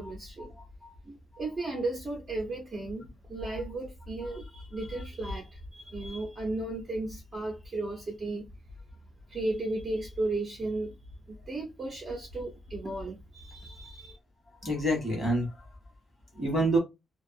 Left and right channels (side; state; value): both; normal; correlation 0.78